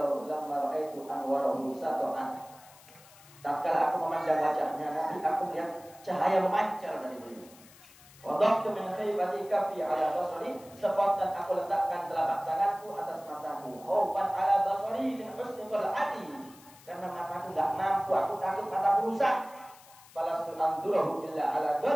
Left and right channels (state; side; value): noise; left; hiss, 23 dB below the sound